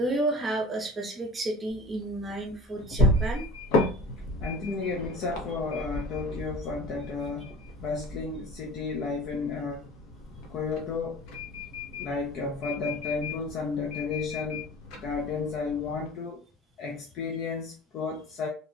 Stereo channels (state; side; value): normal; both; correlation 0.40